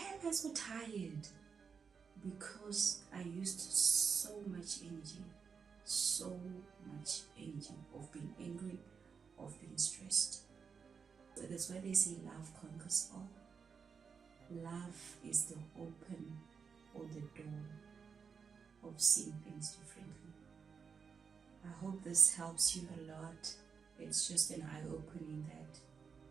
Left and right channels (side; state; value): left; quieter; 6.0 dB